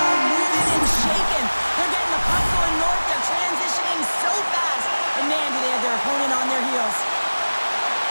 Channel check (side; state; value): both; inverted; correlation -1.00